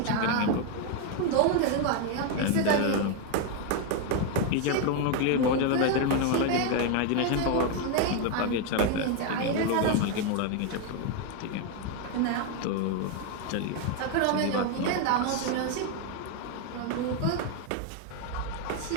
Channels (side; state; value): both; different; correlation 0.01